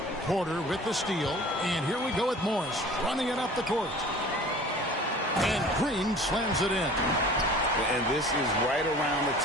Porter with the steal. And here we go with Morris running it up the court. And Green slams it in. And this is right around the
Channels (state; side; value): normal; both; correlation 0.45